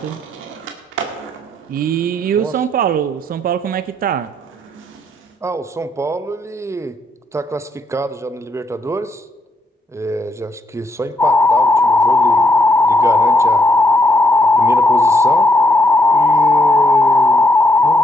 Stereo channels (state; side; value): normal; both; correlation 0.75